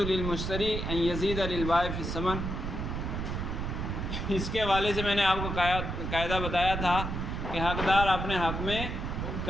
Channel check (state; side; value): noise; right; rumble, 3 dB below the sound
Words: ان يزيد للبائع في الثمن۔ اس کے حوالے سے میں نے آپ کو قاعدہ بتایا تھا کہ حقدار اپنے حق میں